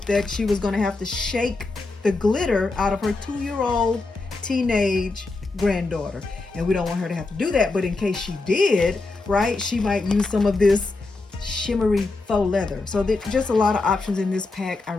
that she was going to have to shake the glitter out of her 2-year-old teenage granddaughter, and we don't want her to have to do that, but in case she did, right, she might use some of this shimmery faux leather. So there's just a lot of options in this pack. I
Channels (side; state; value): right; quieter; 3.5 dB